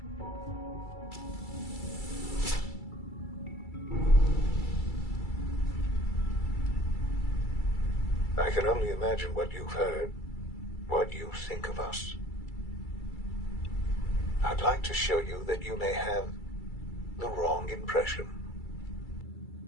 I can only imagine what you've heard, what you think of us. I'd like to show you that you may have the wrong impression.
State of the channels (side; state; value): right; late; 2.3 ms